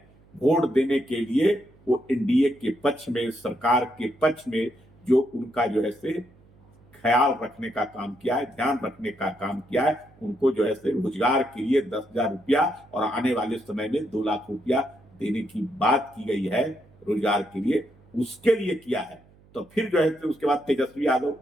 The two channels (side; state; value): right; noise; hum, 28 dB below the sound